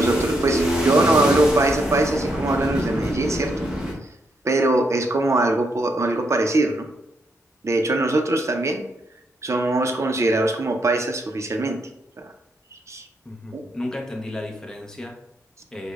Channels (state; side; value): normal; both; correlation 0.78